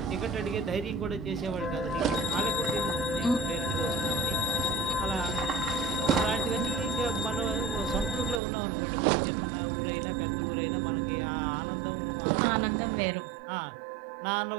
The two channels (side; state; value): left; drops out; at 8.4 s